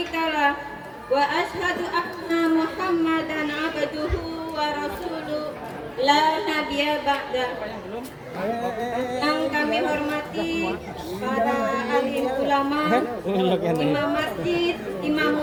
wa asyhadu anna Muhammadan abduhu wa rasuluh la nabiyya ba'da. Yang kami hormati para alim ulama, imam masjid, imam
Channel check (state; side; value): identical; both; correlation 1.00